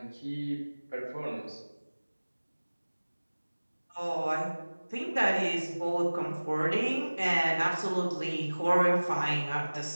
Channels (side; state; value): both; inverted; correlation -1.00